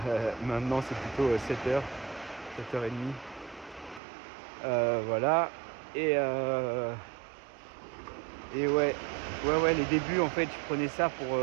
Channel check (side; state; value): left; drops out; at 4.0 s